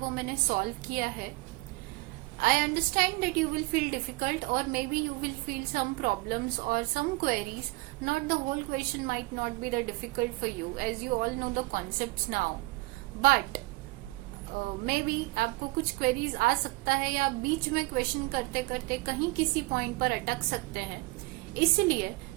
मैंने सॉल्व किया है. I understand that you will feel difficult or maybe you will feel some problems or some queries. Not the whole question might not be the difficult for you as you all know the concepts now. But maybe आपको कुछ queries आ सकता है या बीच में question करते करते कहीं किसी पॉइंट पर अटक सकते हैं. इसलिए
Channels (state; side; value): quieter; left; 22.7 dB